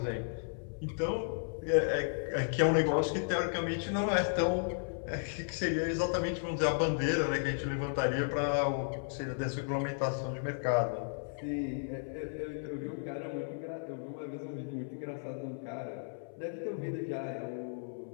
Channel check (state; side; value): silent; right; 55 dB below the other